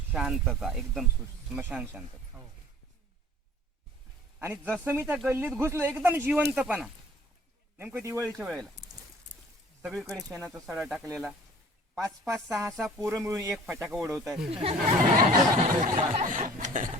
शांतता, एकदम स्मशान शांतता. आणि जसं मी त्या गल्लीत घुसलो, एकदम जिवंतपणा. नेमकं दिवाळीच्या वेळेला सगळीकडे शेणाचा सडा टाकलेला, 5-5, 6-6 पोरं मिळून एक फटाका उडवत आहेत.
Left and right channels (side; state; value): both; normal; correlation 0.49